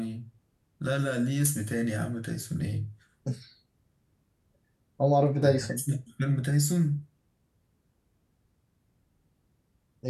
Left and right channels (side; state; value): both; identical; correlation 1.00